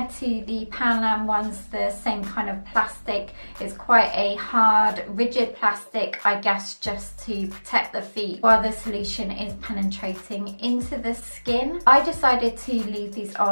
to the Panam ones, the same kind of plastic. It's quite a hard, rigid plastic, I guess, just to protect the feet while the solution is penetrating into the skin. I decided to leave these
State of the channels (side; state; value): both; inverted; correlation -1.00